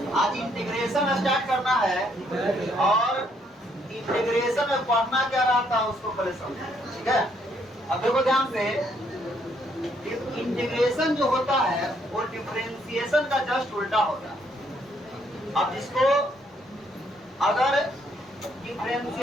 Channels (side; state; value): both; normal; correlation 0.70